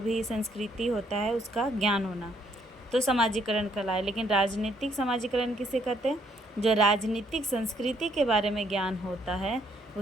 संस्कृति होता है उसका ज्ञान होना, तो समाजीकरण कहलाए। लेकिन राजनीतिक समाजीकरण किसे कहते हैं? जो राजनीतिक संस्कृति के बारे में ज्ञान होता है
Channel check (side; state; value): both; normal; correlation 0.69